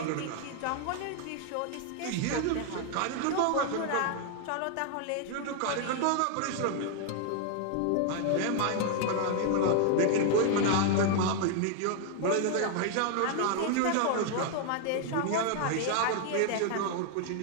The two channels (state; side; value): different; both; correlation 0.00